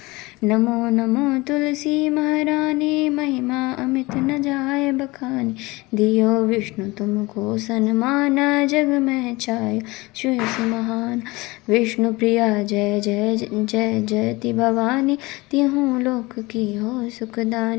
नमो नमो तुलसी महारानी, महिमा अमित न जाय बखानी, दियो विष्णु तुमको सन्मान, जग में छाय सुयस महान। विष्णु प्रिया जय जय जय जयति भवानी, तिहु लोक की हो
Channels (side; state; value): right; quieter; 22.6 dB